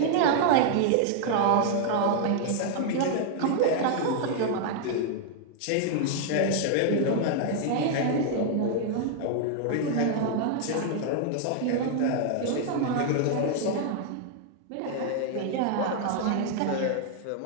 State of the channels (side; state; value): both; different; correlation 0.00